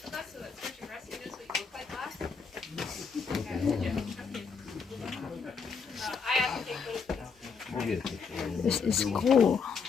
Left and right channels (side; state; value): right; quieter; 5.5 dB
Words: This is cool.